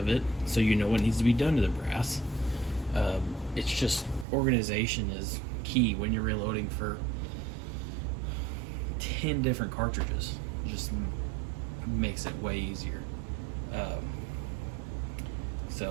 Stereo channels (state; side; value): drops out; left; at 4.2 s